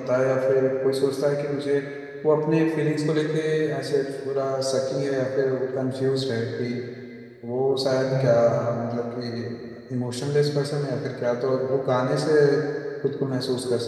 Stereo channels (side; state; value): both; identical; correlation 1.00